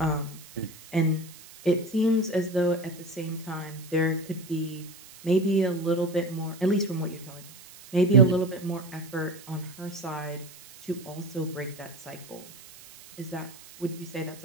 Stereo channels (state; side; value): noise; right; hiss, 19 dB below the sound